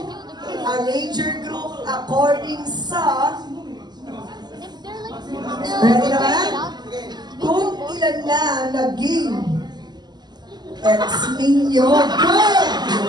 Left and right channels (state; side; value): late; left; 0.21 ms